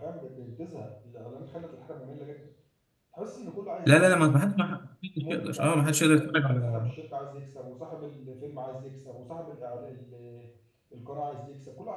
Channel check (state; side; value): identical; both; correlation 1.00